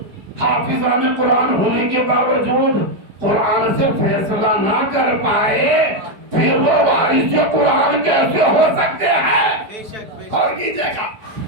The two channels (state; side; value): late; left; 4.8 ms